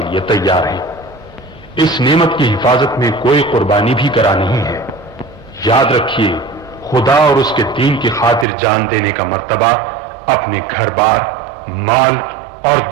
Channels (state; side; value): drops out; left; at 8.5 s